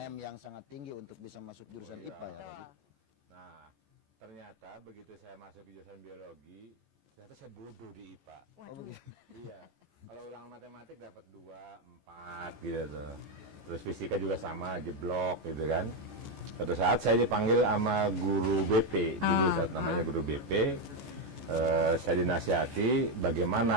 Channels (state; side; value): late; left; 14 ms